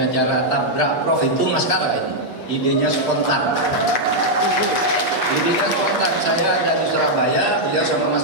tabrak Prof itu Mas Kara ini. Idenya spontan. Saya ada di Surabaya, beliau sama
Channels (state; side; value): late; right; 8.2 ms